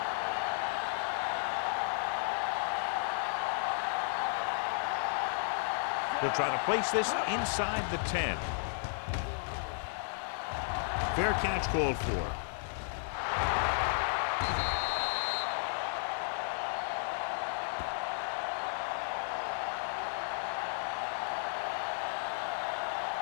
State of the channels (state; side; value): silent; right; digital silence